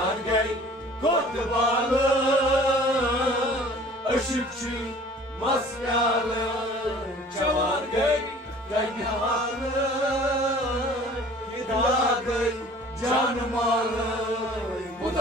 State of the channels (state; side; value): normal; both; correlation 0.49